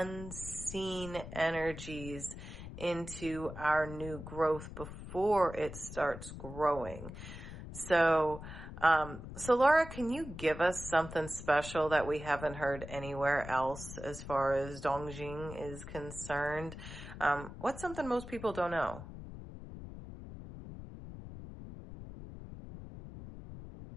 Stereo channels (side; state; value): left; noise; rumble, 11 dB below the sound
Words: energies into our new growth before it starts growing. So, Laura, can you give us something special that we haven't heard anywhere else as far as Dongzhi is concerned? What's something most people don't know?